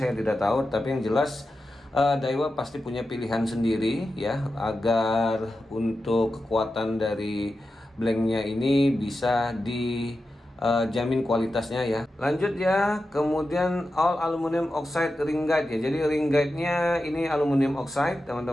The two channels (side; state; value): both; normal; correlation 0.91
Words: tidak tahu, tapi yang jelas Daiwa pasti punya pilihan sendiri ya, agar untuk kekuatan dari blanknya ini bisa dijamin kualitasnya ya. Lanjut ya, kemudian all aluminium oxide ring guide ya. Jadi ring guide-nya ini aluminium oxide